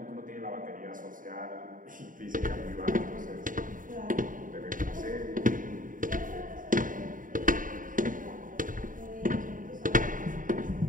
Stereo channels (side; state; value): left; late; 0.39 ms